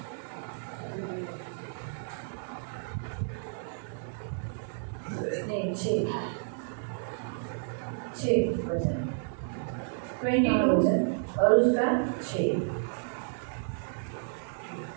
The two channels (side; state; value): left; silent; digital silence